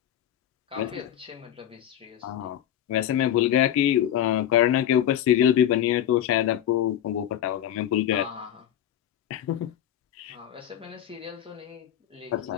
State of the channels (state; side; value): quieter; right; 11.0 dB